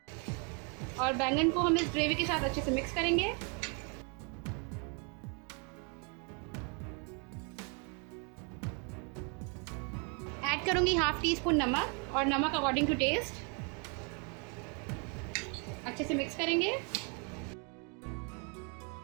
और बैंगन को हम इस ग्रेवी के साथ अच्छे से मिक्स करेंगे। ऐड करूंगी हाफ टी स्पून नमक, और नमक अकॉर्डिंग टू टेस्ट। अच्छे से मिक्स करेंगे।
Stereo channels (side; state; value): left; quieter; 36.2 dB